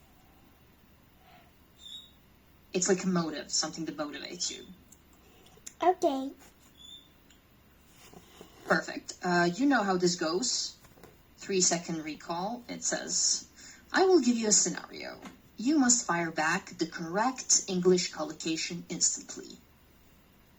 It's like a motive, something that motivates you. Okay. Perfect. You know how this goes. 3-second recall. It says, I will give you a scenario. You must fire back the correct English collocation instantly.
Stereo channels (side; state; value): both; identical; correlation 1.00